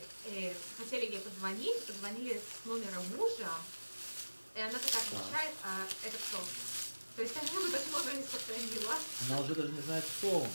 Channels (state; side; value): inverted; both; correlation -1.00